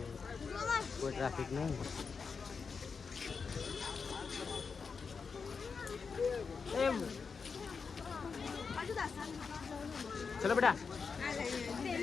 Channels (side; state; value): right; quieter; 5.3 dB